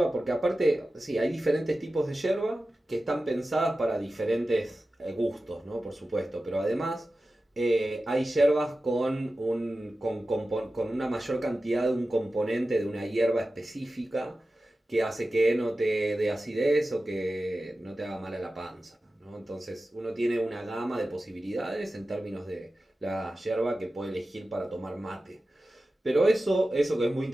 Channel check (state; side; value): normal; both; correlation 0.94